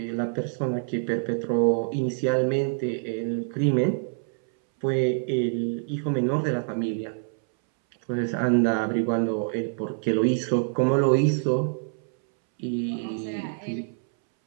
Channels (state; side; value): silent; left; 61 dB below the other